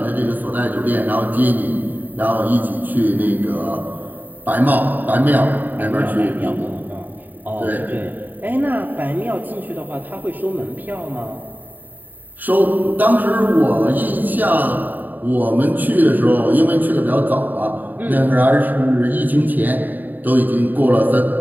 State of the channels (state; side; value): late; left; 0.087 ms